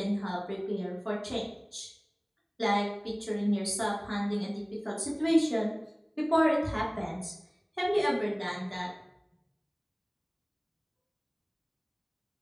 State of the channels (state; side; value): identical; both; correlation 1.00